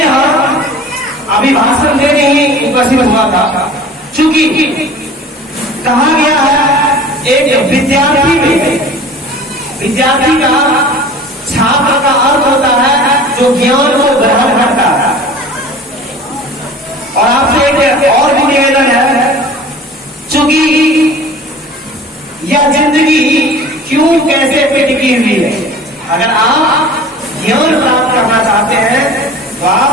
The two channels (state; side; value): normal; both; correlation 0.42